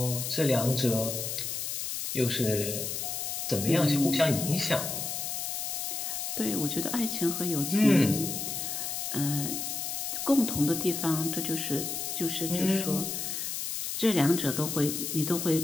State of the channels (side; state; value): left; noise; hiss, 3 dB below the sound